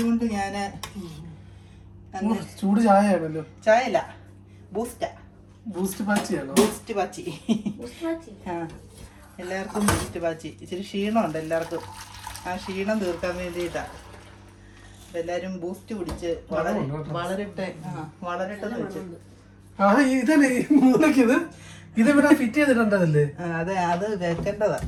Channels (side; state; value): both; identical; correlation 1.00